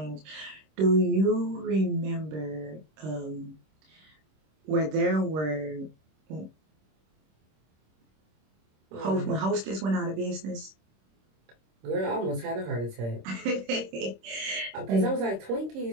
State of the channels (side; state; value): left; late; 26 ms